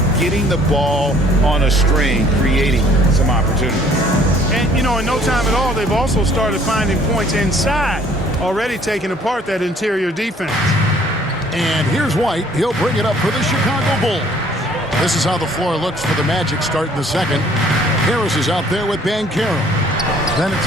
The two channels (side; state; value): both; normal; correlation 0.58